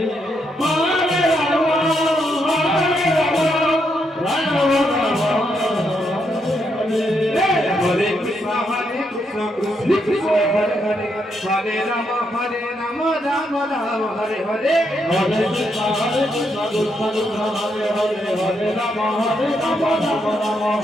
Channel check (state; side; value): normal; both; correlation 0.78